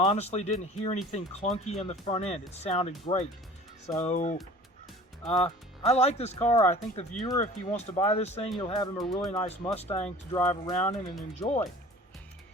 didn't hear anything clunky in the front end. It sounded great. So I like this car. I think the viewer, if he wants to buy this thing, you'll have him a really nice Mustang to drive around in and enjoy.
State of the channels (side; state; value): both; normal; correlation 0.44